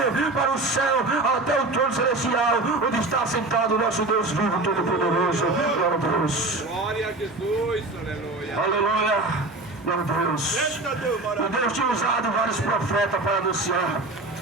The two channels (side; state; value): left; quieter; 3.0 dB